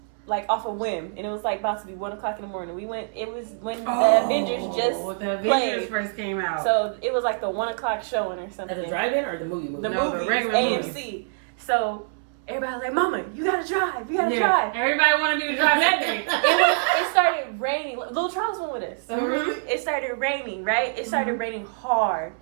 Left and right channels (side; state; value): left; silent; 62 dB below the other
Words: off a whim, and it was like about to be 1:00 in the morning. We went. It was when the Avengers just played. First came out. So it was like the 1:00 showing or something. At the drive-in or the movie? The No, movies, the regular AMC. movie. So everybody was like, "Mama, you gotta drive. You gotta drive." Everybody wanted me to drive that day. It started raining. Little Charles went with us. Mm-hmm. It started raining, right? It started raining hard.